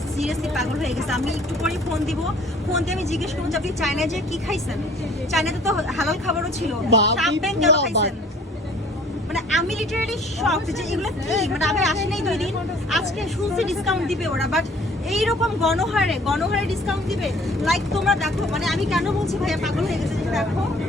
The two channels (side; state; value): both; normal; correlation 0.54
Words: সিরিয়াসলি পাগল হয়ে গেছে। আমি একটু পরে ফোন দিয়ে আমি জিজ্ঞেস করবো যে আপনি চায়নায় যে কি খাইছেন? চায়নাতে তো হালাল খাবারও ছিল, চাম্পেন কেন খাইছেন? মানে আমি লিটারালি শকড যে এগুলো কি, মানে আমি আসি নাই 2 দিন, আজকে শুনছি ডিসকাউন্ট দিবে ওরা। বাট এইরকম গণহারে ডিসকাউন্ট দিবে? লাইক তোমরা দেখো, মানে আমি কেন বলছি ভাইয়া পাগল হয়ে গেছে, দেখো